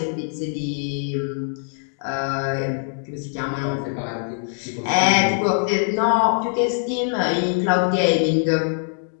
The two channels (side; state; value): right; silent; digital silence